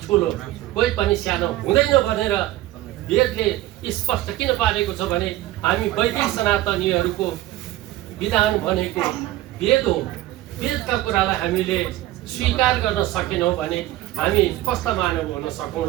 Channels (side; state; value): left; quieter; 15.9 dB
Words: ठुलो, कोही पनि सानो हुँदैन भनेर वेदले स्पष्ट किन पारेको छ भने हामी वैदिक सनातनीहरूको विधान भनेको वेद हो। वेदका कुरालाई हामीले स्वीकार गर्न सकेनौँ भने हामी कस्ता मानव हुन